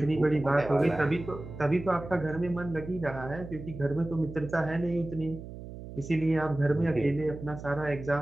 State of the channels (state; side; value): noise; right; hum, 12 dB below the sound